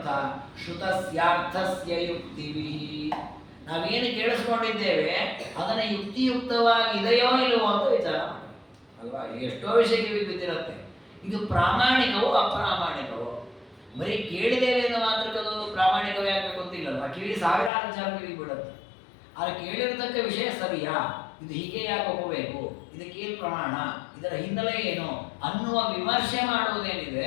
ಶ್ರುತಸ್ಯಾರ್ಥಸ್ಯ ಯುಕ್ತಿವಿ. ನಾವೇನು ಕೇಳಿಸ್ಕೊಂಡಿದ್ದೇವೆ ಅದನ್ನ ಯುಕ್ತಿಯುಕ್ತವಾಗಿ ಇದೆಯೋ ಇಲ್ಲವೋ ಅಂತ ವಿಚಾರ ಮಾಡಿ ಅಲ್ವಾ. ಎಷ್ಟೋ ವಿಷಯಕ್ಕೆ ಬಿದ್ದಿರುತ್ತೆ. ಇದು ಪ್ರಾಮಾಣಿಕವೋ ಅಪ್ರಾಮಾಣಿಕವೋ? ಬರೀ ಕೇಳಿದ್ದೇವೆ ಎಂದು ಮಾತ್ರಕ್ಕದು ಪ್ರಾಮಾಣಿಕವೇ ಆಗಬೇಕು ಅಂತಿಲ್ಲಲ್ವ. ಕಿವಿ ಸಾವಿರಾರು ವಿಚಾರ ಕಿವಿ ಬಿಡುತ್ತೆ. ಆದರೆ ಕೇಳಿರತಕ್ಕ ವಿಷಯ ಸರಿಯಾ, ಇದು ಹೀಗೆ ಯಾಕೆ ಹೋಗಬೇಕು, ಇದಕ್ಕೇನು ಪ್ರಮಾಣ, ಇದರ ಹಿನ್ನೆಲೆ ಏನು ಅನ್ನುವ ವಿಮರ್ಶೆ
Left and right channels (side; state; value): right; drops out; at 17.7 s